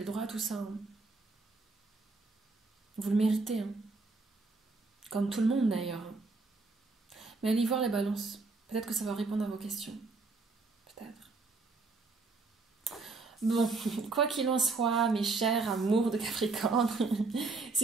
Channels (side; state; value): left; quieter; 3.8 dB